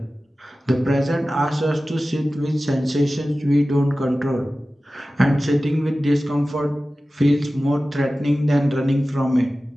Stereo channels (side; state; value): both; normal; correlation 0.96